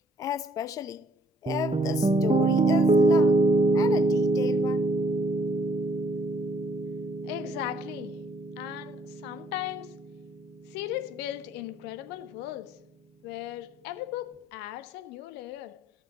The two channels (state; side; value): normal; both; correlation 0.65